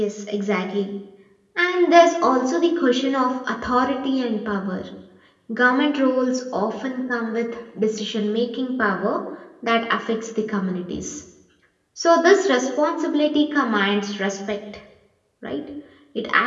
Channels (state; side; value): identical; both; correlation 1.00